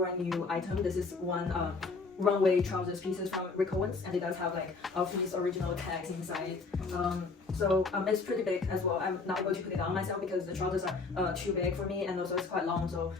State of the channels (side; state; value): right; quieter; 4.2 dB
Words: new item. This is one runway trousers pieces from Rick Owens, and it does have like all of these original tags inside. It's pretty big as well. I'm not able to put it on myself because the trousers are too big for me, and also it's quite long, so